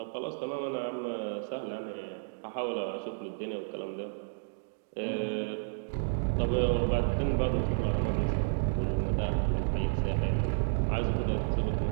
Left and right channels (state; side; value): silent; left; digital silence